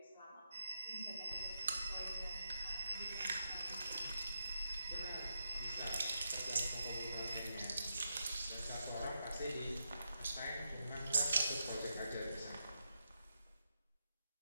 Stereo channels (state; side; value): inverted; both; correlation -0.85